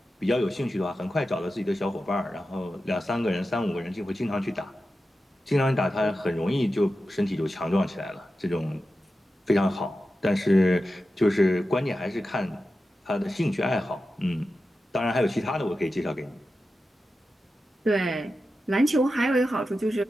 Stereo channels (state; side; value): normal; both; correlation 0.92